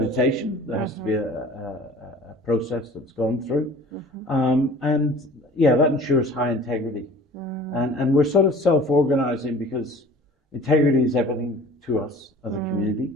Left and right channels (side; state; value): both; normal; correlation 0.46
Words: There has to be a process that's gone through. And yeah, that ensures high integrity. And we're sort of self-organizing because integrity is everything to us as a community.